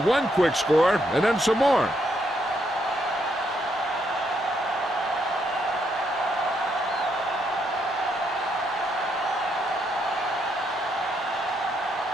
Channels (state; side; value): normal; both; correlation 0.76